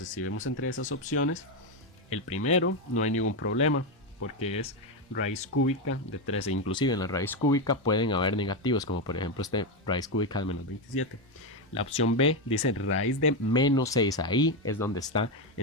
si vemos entre esas opciones, el primero no hay ningún problema, porque es raíz cúbica de 13. Inclusive en la raíz cúbica pueden haber negativos, como por ejemplo este raíz cúbica de menos 27. La opción B dice raíz de menos 6, ahí es donde está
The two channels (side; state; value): both; normal; correlation 0.08